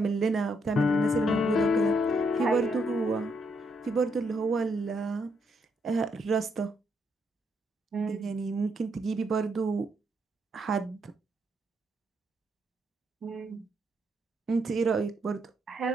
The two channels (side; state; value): both; normal; correlation 0.76